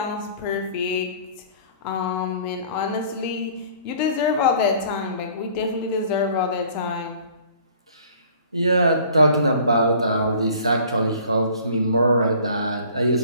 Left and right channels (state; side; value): inverted; both; correlation -0.51